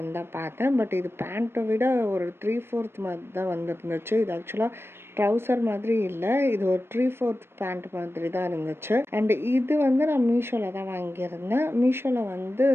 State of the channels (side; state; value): left; late; 0.12 ms